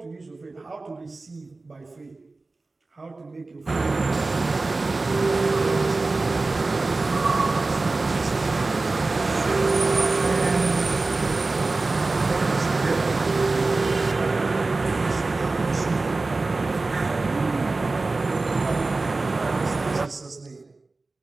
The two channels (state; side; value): quieter; left; 3.5 dB